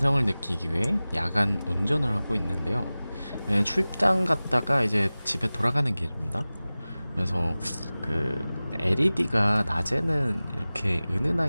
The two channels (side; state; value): both; inverted; correlation -0.98